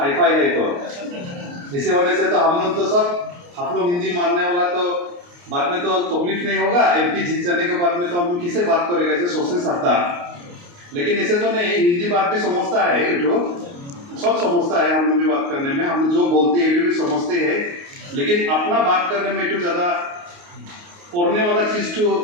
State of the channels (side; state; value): left; late; 29 ms